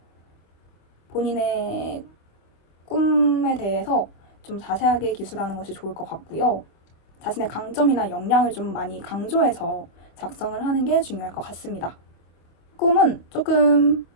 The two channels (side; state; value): right; late; 25 ms